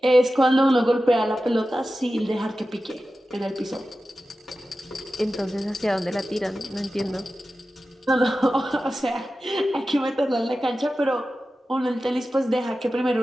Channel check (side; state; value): both; normal; correlation 0.93